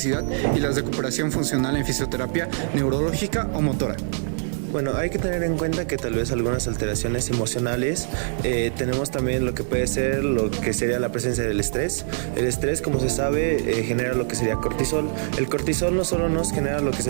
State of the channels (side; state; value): left; silent; digital silence